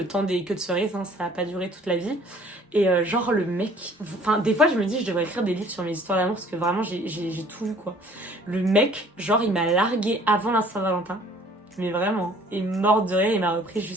temps des queues de cerises, hein, ça a pas duré toute la vie. Et genre le mec, enfin des fois je me dis je devrais écrire des livres sur mes histoires d'amour parce que vraiment j'ai tout lu quoi. Le mec, genre il m'a largué avant la Saint-Valentin. Mais vraiment, et mort de rire, il m'a repris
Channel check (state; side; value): normal; both; correlation 0.54